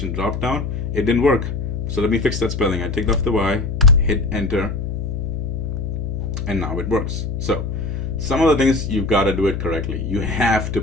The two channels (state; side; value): noise; left; hum, 4 dB below the sound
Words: drop down, it didn't work. So let me fix that spelling. I take off the Y, hit enter, and now it works. So some of the things, you've got to do it correctly. You have to